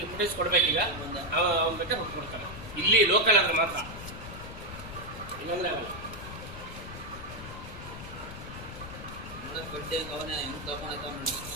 ಫುಟೇಜ್ ಕೊಡ್ಬೇಕೀಗ. ಅವ್ನು ಬೇಕಾದ್ರೆ ಕೊಡ್ತಾನೆ. ಇಲ್ಲಿ ಲೋಕಲ್ ಆದ್ರೆ ಮಾತ್ರ, ಇಲ್ಲಾಂದ್ರೆ ಆಗಲ್ಲ.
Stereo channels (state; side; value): noise; left; rumble, 11 dB below the sound